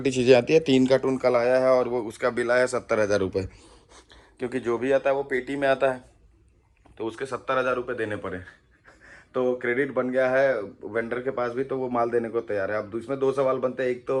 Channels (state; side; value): identical; both; correlation 1.00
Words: चीज़ें आती है। 3 कार्टून कल आया है और वो उसका बिल आया 70,000 रुपये, क्योंकि जो भी आता है वो पेटी में आता है, तो उसके 70,000 रुपये देने पड़े। तो क्रेडिट बन गया है वेंडर के पास भी, तो वो माल देने को तैयार है। अब इसमें 2 सवाल बनते हैं। एक तो